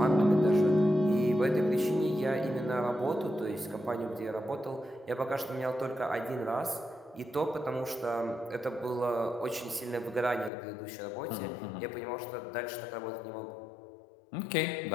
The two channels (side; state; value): right; drops out; at 10.5 s